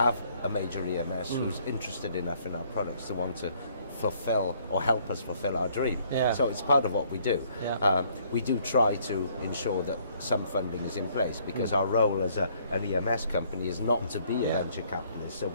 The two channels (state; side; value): inverted; both; correlation -0.64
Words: a major EMS who's interested enough in our products to want to fulfill or help us fulfill our dream. So it's part of what we do. We do try to ensure that some funding is in place, because our role as an EMS company is not to be a venture capitalist, so